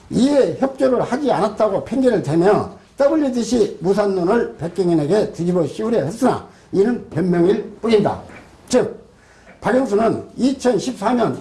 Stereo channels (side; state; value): both; identical; correlation 1.00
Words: 이에 협조를 하지 않았다고 핑계를 대며 WTC 무산론을 백경현에게 뒤집어 씌우려 했으나 이는 변명일 뿐입니다. 즉 박영수는 2014년